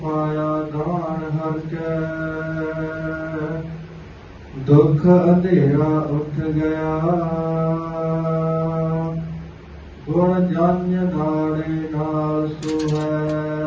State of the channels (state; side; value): identical; both; correlation 1.00